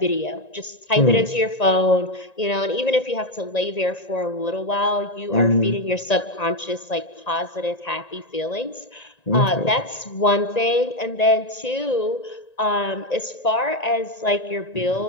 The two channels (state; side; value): late; right; 1.9 ms